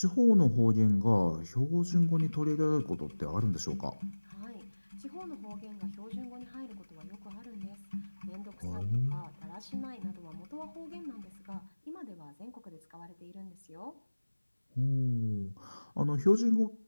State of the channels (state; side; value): inverted; both; correlation -1.00